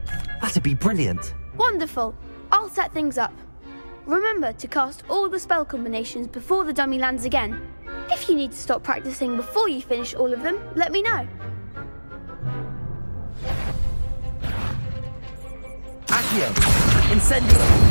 That'd be brilliant. Wonderful. I'll set things up. Remember to cast all the spell combinations before the dummy lands again. If you need to stop practicing before you finish all of them, let me know. Accio! Incendio!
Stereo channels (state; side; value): inverted; both; correlation -1.00